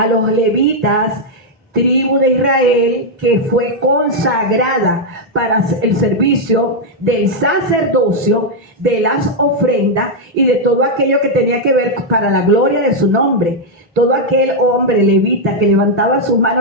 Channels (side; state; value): both; normal; correlation -0.01